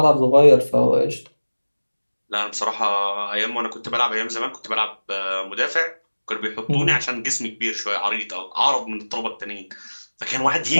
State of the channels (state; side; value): inverted; both; correlation -1.00